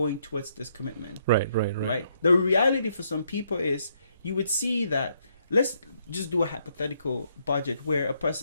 towards this commitment? Right. Right. Right. Right. The reality for some people is you would see that, let's just do a hypothetical budget where a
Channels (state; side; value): inverted; both; correlation -0.73